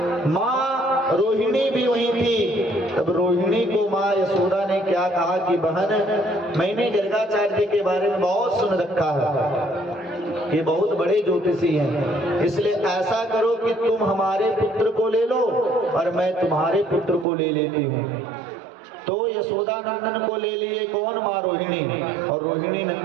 माँ रोहिणी भी वहीं थी। तब रोहिणी को माँ यशोदा ने क्या कहा कि बहन, मैंने गर्गाचार्य के बारे में बहुत सुन रखा है, ये बहुत बड़े ज्योतिषी हैं, इसलिए ऐसा करो कि तुम हमारे पुत्र को ले लो और मैं तुम्हारे पुत्र को ले लेती हूँ। तो यशोदा नंदन को ले लिए कौन? माँ रोहिणी। और रोहिणी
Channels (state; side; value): drops out; left; at 17.2 s